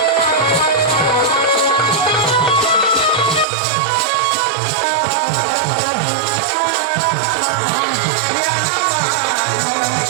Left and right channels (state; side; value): drops out; left; at 3.5 s